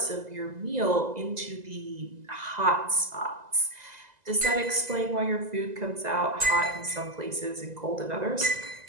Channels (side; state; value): left; late; 2.0 ms